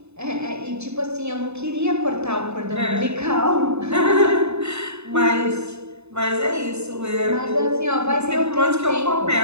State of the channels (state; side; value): late; left; 0.81 ms